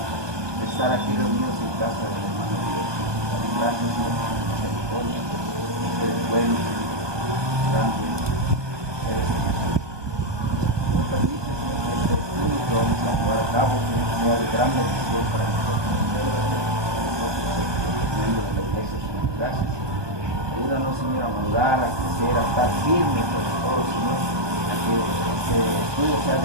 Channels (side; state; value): left; late; 1.2 ms